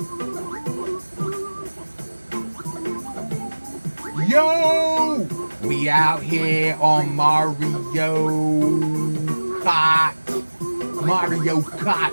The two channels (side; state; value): both; inverted; correlation -1.00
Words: Yo! We out here on Mario Kart. Mario Kart.